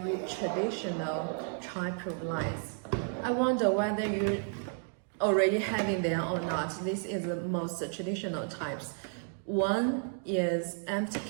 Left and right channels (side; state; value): left; silent; 56 dB below the other